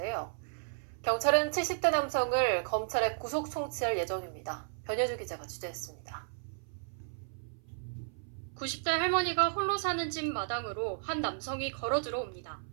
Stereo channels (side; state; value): left; silent; 55 dB below the other